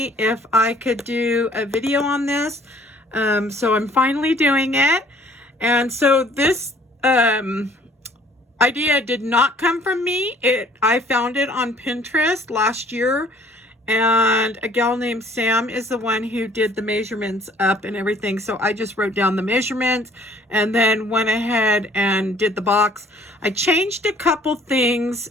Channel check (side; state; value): both; normal; correlation 0.57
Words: if I could do a video on this, so I'm finally doing it. And so this idea did not come from me. I found it on Pinterest last year, and a gal named Sam is the one who did the measurements up and everything. So I just wrote down the measurements and then went ahead and did the box. I changed a couple things